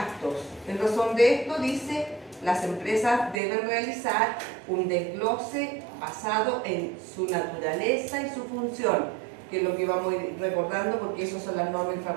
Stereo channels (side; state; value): left; drops out; at 3.4 s